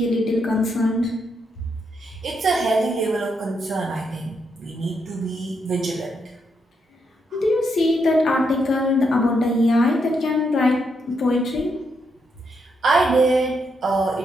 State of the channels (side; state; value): both; normal; correlation 0.79